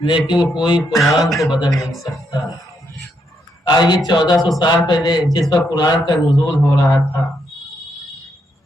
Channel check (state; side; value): normal; both; correlation 0.78